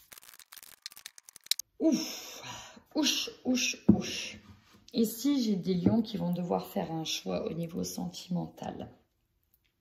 Ouch. Ici, j'ai des lions qui vont devoir faire un choix au niveau sentimental.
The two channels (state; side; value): identical; both; correlation 1.00